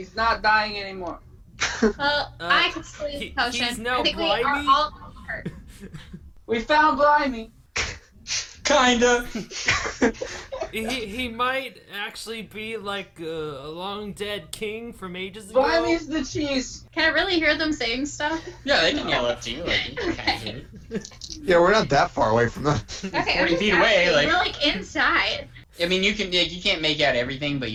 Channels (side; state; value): both; identical; correlation 1.00